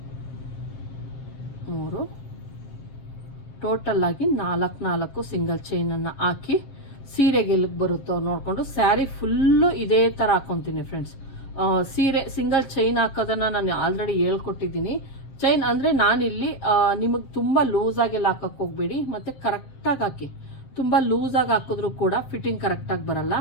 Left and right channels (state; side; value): late; right; 7.5 ms